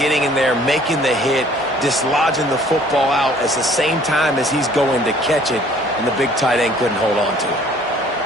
in there, making the hit, dislodging the football out at the same time as he's going to catch it, and the big tight end couldn't hold on to it.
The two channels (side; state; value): both; normal; correlation 0.56